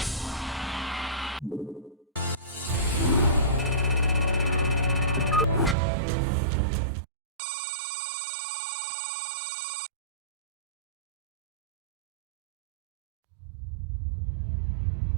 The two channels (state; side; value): drops out; left; at 5.8 s